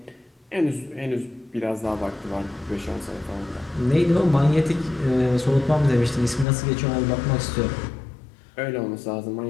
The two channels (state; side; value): drops out; right; at 6.5 s